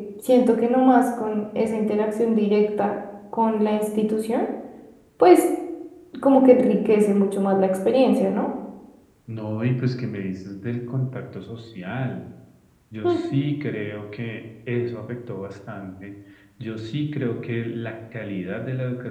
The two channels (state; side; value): identical; both; correlation 1.00